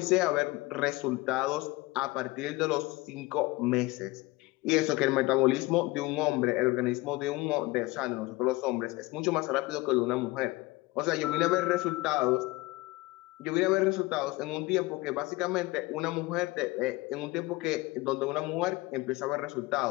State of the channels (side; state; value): right; quieter; 21.2 dB